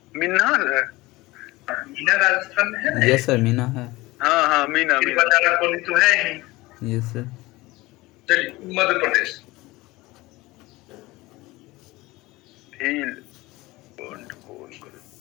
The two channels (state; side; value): quieter; right; 20.3 dB